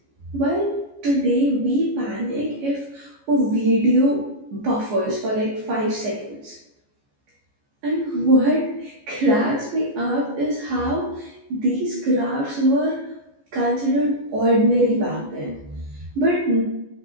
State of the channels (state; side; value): late; left; 14 ms